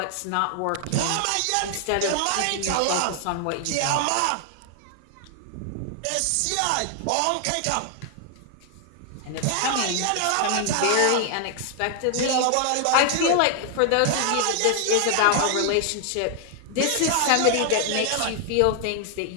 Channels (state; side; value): different; both; correlation 0.00